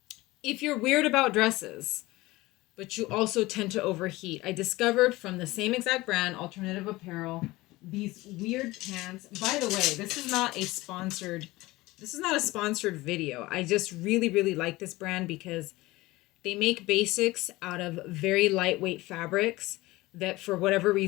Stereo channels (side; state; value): right; quieter; 19.8 dB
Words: If you're weird about dresses, but you also tend to overheat, I discovered from the same exact brand, Alternative Apparel, these weird pants. By the way, this is not a sponsored video. I just really, really like this brand because they make basics out of very lightweight fabrics that, for whatever